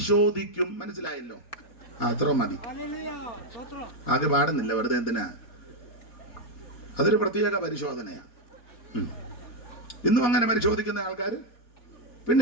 മനസ്സിലായല്ലോ? അത്ര മതി. അത് പാടുന്നില്ല, വെറുതെ എന്തിനാ? അതൊരു പ്രത്യേക പരിശോധനയാ. ഇന്നും അങ്ങനെ പരിശോധിക്കുന്ന ആൾക്കാർ.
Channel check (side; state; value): right; late; 4.1 ms